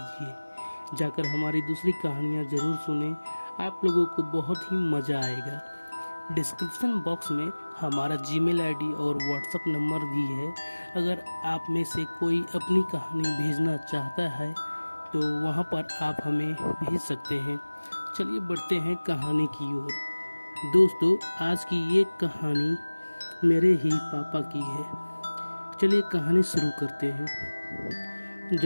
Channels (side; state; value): both; inverted; correlation -1.00